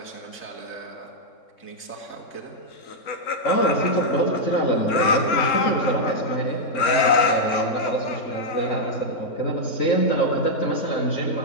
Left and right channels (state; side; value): late; right; 3.7 ms